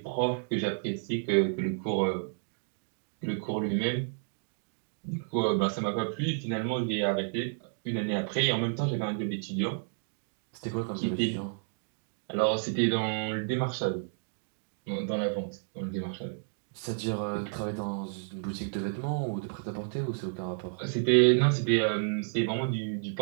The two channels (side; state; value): left; silent; digital silence